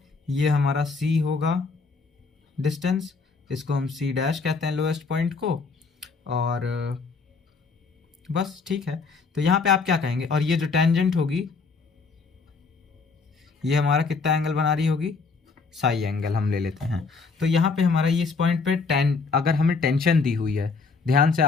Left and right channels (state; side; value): quieter; right; 4.6 dB